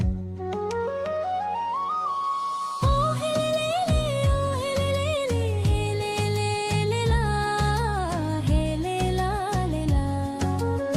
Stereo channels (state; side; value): identical; both; correlation 1.00